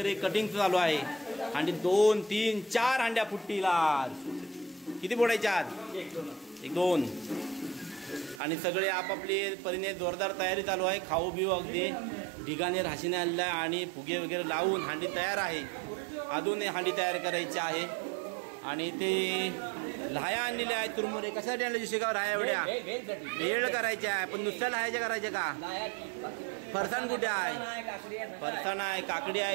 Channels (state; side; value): drops out; left; at 8.4 s